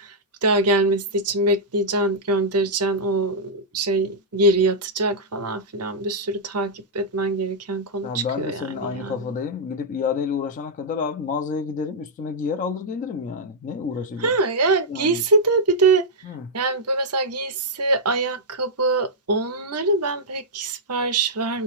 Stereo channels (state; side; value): normal; both; correlation -0.07